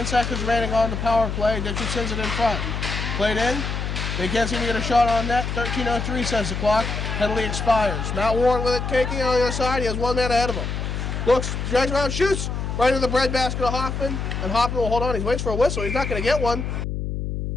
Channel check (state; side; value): noise; left; hum, 3 dB below the sound